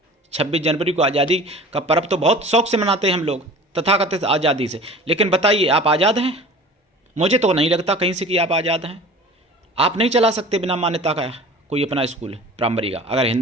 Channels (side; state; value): both; normal; correlation 0.41